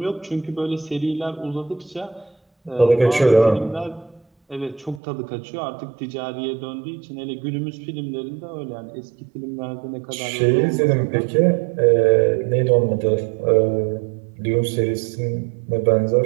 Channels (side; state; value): left; drops out; at 5.0 s